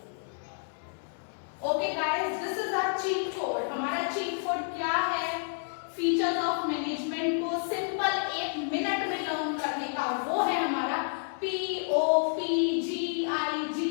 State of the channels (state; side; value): silent; right; digital silence